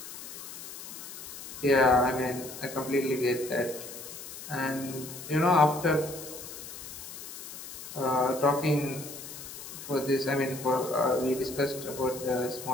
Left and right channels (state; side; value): noise; left; hiss, 11 dB below the sound